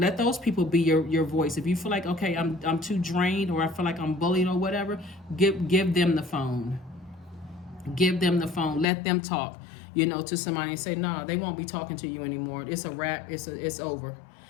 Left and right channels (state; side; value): drops out; right; at 8.8 s